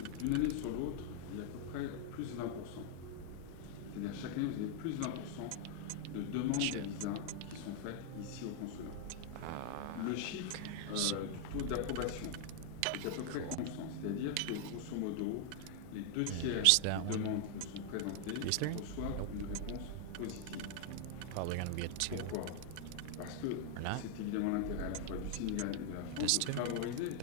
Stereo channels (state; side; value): different; both; correlation 0.00